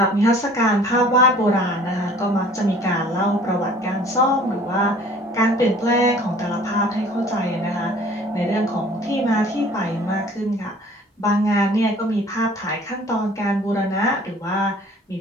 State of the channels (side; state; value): both; normal; correlation 0.51